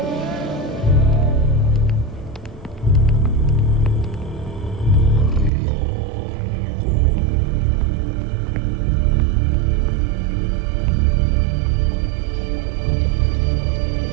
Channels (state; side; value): drops out; left; at 5.5 s